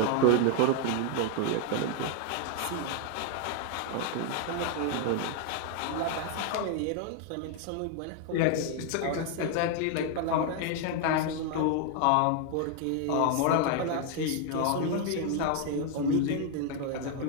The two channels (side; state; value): both; different; correlation 0.00